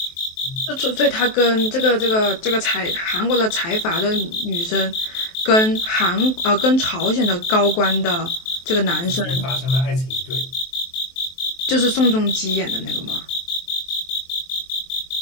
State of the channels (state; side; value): late; right; 23 ms